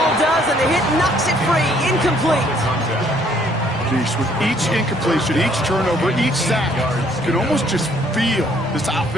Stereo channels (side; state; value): both; normal; correlation 0.63